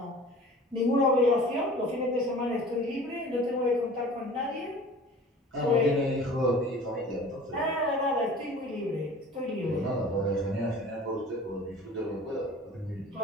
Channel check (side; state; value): both; normal; correlation 0.44